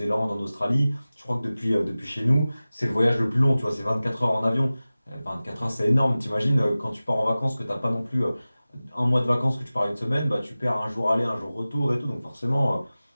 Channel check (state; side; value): inverted; both; correlation -0.97